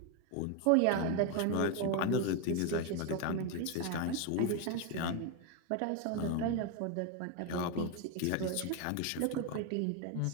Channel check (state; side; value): different; both; correlation 0.02